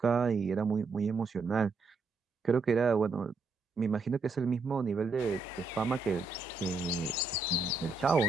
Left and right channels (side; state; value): left; quieter; 4.0 dB